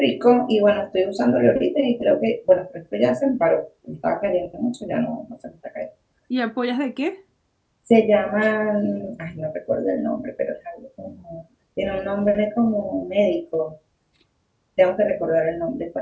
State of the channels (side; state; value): both; identical; correlation 1.00